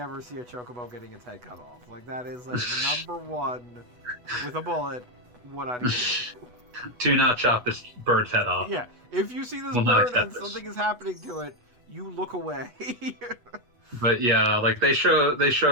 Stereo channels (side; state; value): left; late; 8.1 ms